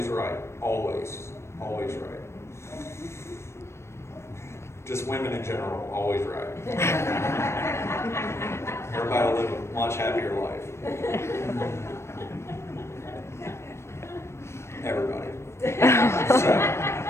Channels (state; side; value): late; right; 0.13 ms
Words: right. Always right. Just women in general, always right. Everybody will live a much happier life. Everybody. So,